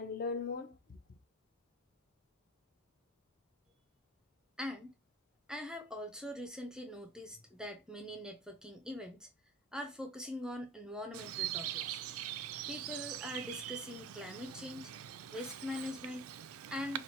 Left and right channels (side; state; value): both; normal; correlation 0.35